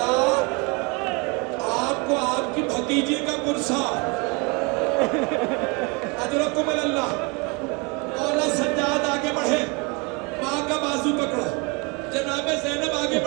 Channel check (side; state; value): left; quieter; 30.2 dB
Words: آپ کو آپ کی بھتیجی کا گرسا اجرکم اللہ. مولا سجاد آگے بڑھے, ماں کا بازو پکڑا. جناب زینب آگے